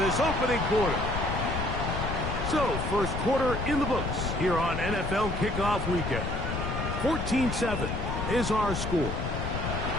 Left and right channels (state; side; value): noise; left; rumble, 3 dB below the sound